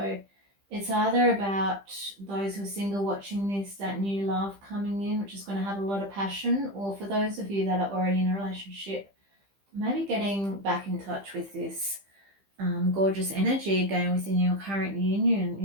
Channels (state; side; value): late; left; 15 ms